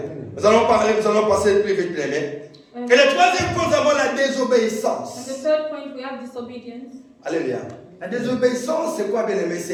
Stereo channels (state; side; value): identical; both; correlation 1.00